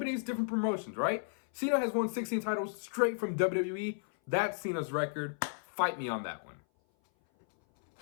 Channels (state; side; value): silent; right; 55 dB below the other